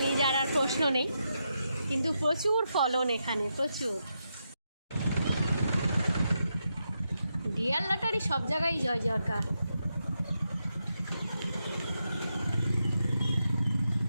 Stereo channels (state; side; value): inverted; both; correlation -0.85